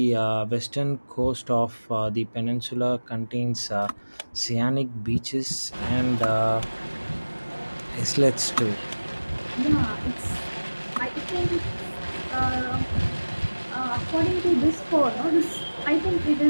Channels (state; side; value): inverted; both; correlation -1.00